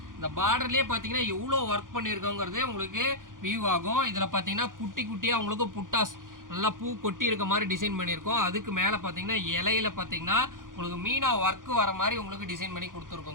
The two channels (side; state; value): left; late; 0.89 ms